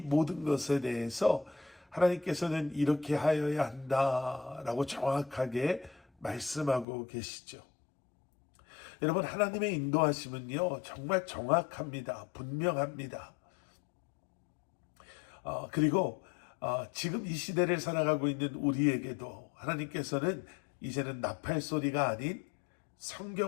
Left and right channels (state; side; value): drops out; right; at 6.9 s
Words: 것에 대해서 하나님께서는 이렇게 하여야 한다라고 정확하게 말씀하고 계시죠. 여러분, 하나님의 인도하심은요 정말 정확합니다. 분명합니다. 그리고 지금 이 시대를 살아가고 있는 우리에게도 하나님께서는 이제는 나팔 소리가 아닌